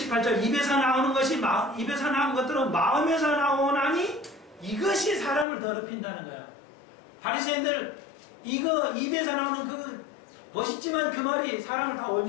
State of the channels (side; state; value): right; drops out; at 5.5 s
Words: 입에서 나오는 입에서 나온 것들은 마음에서 나오나니 이것이 사람을 더럽힌다는 거야. 바리새인들 이거 입에서 나오는 그 멋있지만 그 말이 사람을 다